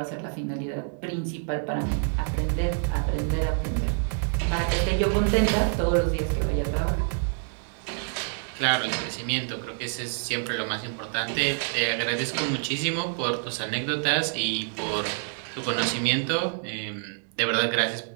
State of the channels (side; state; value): left; silent; 60 dB below the other